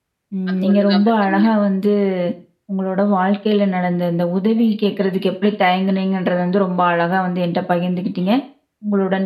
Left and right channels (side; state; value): both; identical; correlation 1.00